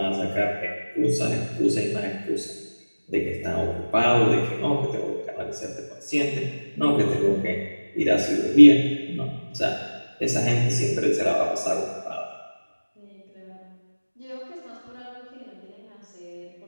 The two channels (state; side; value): inverted; both; correlation -1.00